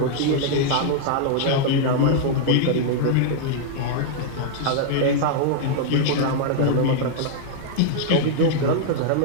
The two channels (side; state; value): both; different; correlation -0.01